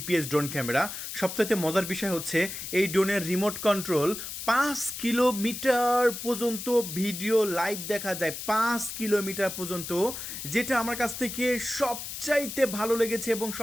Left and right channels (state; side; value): noise; left; hiss, 8 dB below the sound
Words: ড্রোন ক্যামেরা। সবচাইতে মজার বিষয় হচ্ছে এই ড্রোনের রিমোট কন্ট্রোল 5 কিলোমিটার পর্যন্ত ভিডিও লাইভ দেখা যায়, 5 কিলোমিটার পর্যন্ত, যেটা আমার কাছ থেকে সবচাইতে ভালো লেগেছে এবং